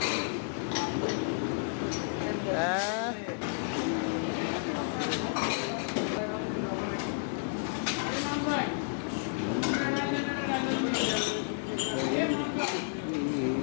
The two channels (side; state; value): right; silent; digital silence